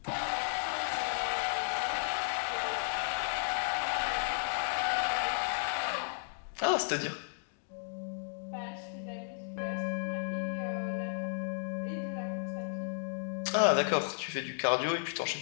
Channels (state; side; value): silent; right; digital silence